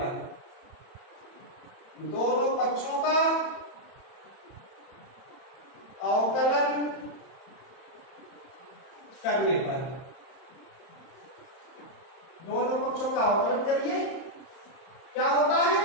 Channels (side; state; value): right; late; 31 ms